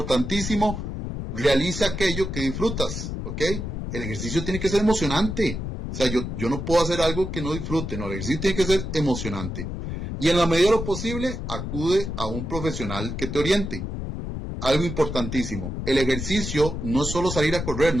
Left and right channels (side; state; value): left; noise; rumble, 5 dB below the sound